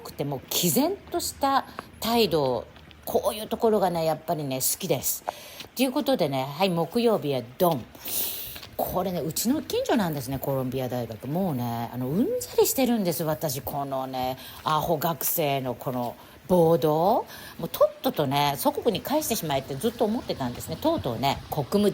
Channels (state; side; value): identical; both; correlation 1.00